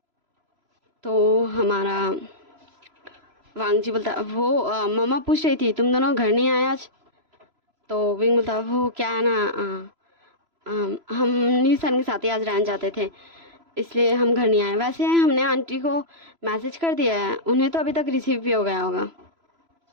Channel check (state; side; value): late; left; 3.0 ms